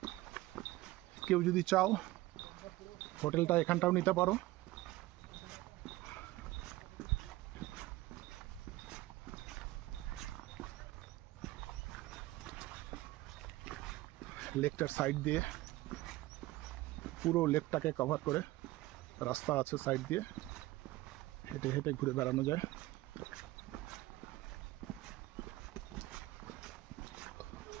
কেউ যদি চাও হোটেলটা এখানটাও নিতে পারো। লেকটার সাইড দিয়ে, পুরো লেকটাকে কভার করে রাস্তা আছে, সাইড দিয়ে হেঁটে হেঁটে ঘুরে বেড়ানো যায়।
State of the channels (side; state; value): left; quieter; 17.9 dB